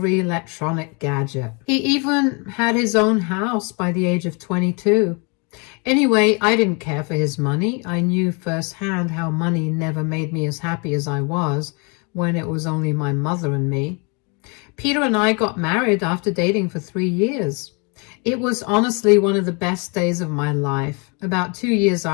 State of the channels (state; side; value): quieter; right; 32.8 dB